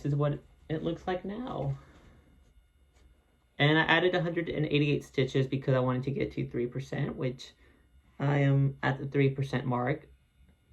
is what it looks like now. And I added 188 stitches because I wanted to get to 3%, which I am at the 3% mark.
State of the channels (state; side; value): identical; both; correlation 1.00